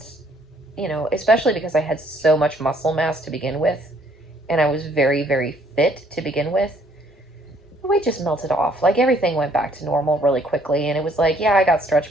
especially because I had so much muscle mass to begin with, and I was very, very fit to begin with, the weight just melted off. Like, everything went back to normal really quickly, and it was like, yeah, I got stretch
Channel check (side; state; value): both; normal; correlation 0.64